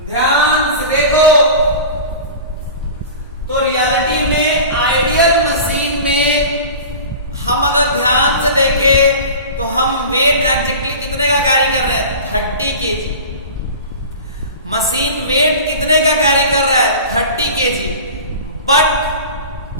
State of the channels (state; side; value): inverted; both; correlation -0.35